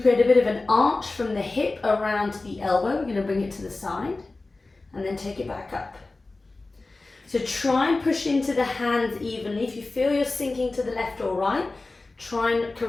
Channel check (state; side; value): quieter; right; 3.3 dB